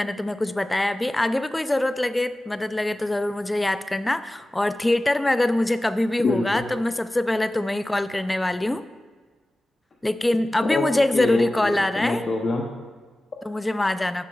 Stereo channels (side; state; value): both; normal; correlation 0.96